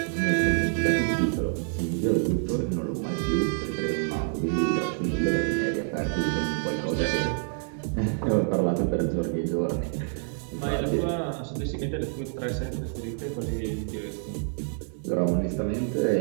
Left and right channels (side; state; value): left; silent; 60 dB below the other